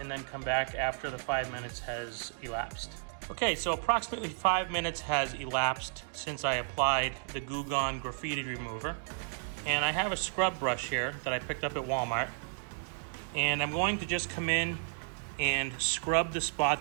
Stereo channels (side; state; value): left; silent; digital silence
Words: then come back after the 5 minutes has elapsed. Okay, so approximately 5 minutes has elapsed since I applied the Goo Gone Graffiti remover. And I have a scrub brush here that I picked up at Walmart. And I'm going to just come in and scrub the